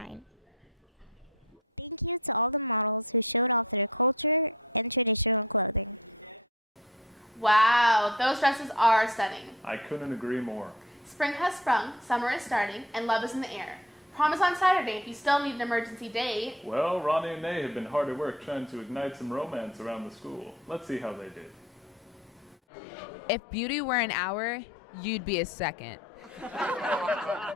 Thank you to all the models who showed off their culture and traditional clothing. Wow, those dresses are stunning. I couldn't agree more. Spring has sprung, summer is starting, and love is in the air. Prom is on Saturday if you still need an emergency date. Well, Ronnie and Nay have been hard at work trying to ignite some romance around the school. Let's see how they did. If beauty were an hour, you'd be a second.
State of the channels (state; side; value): normal; both; correlation 0.45